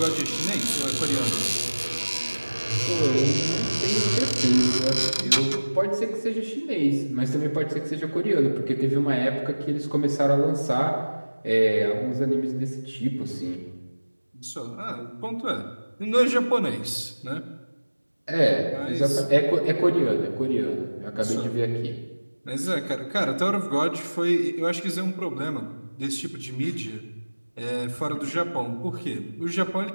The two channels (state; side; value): inverted; both; correlation -1.00